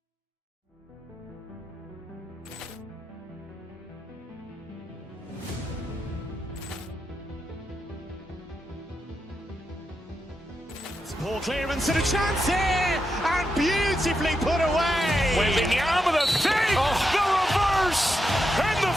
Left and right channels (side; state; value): both; normal; correlation 0.86